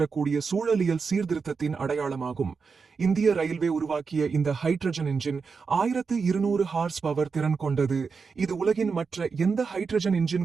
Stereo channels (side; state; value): left; quieter; 5.2 dB